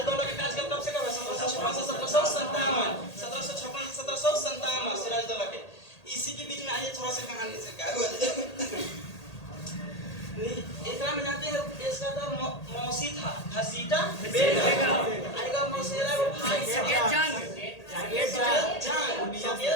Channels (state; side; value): late; right; 1.8 ms